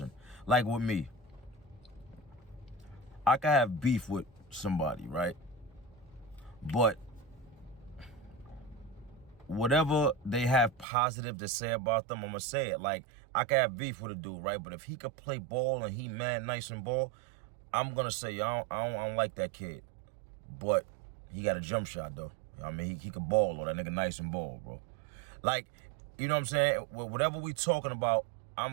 like with me, I can have beef with somebody, right? But whatever they have positive to say about them, I'm gonna say it. Like, I can have beef with a dude, right? But if he could play ball and he mad nice and ball, I'm gonna say I don't like that kid. But he got a jump shot though. I mean, he could ball, or that nigga nice and ball, bro. Like, you know what I'm saying? Whatever we talking about,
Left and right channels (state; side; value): drops out; left; at 10.9 s